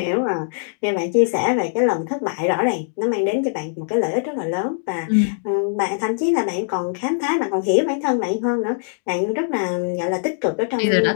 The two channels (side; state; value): right; silent; digital silence